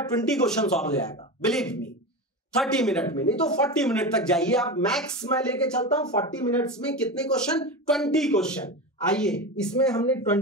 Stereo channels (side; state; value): both; normal; correlation 0.23